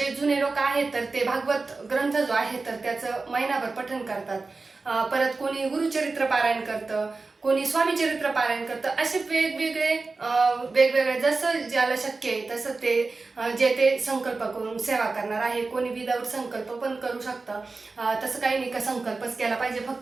जुने लोक आहेत तर ते भागवत ग्रंथ जो आहे तर त्याचं महिनाभर पठण करतात. परत कोणी गुरुचरित्र पारायण करतं, कोणी स्वामी चरित्र पारायण करतं. असे वेगवेगळे जसं ज्याला शक्य आहे तसं ते जे ते संकल्प करून सेवा करणार आहे. कोणी विदाऊट संकल्प पण करू शकतं. तसं काही नाही का संकल्पच केला पाहिजे.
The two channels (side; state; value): left; quieter; 3.8 dB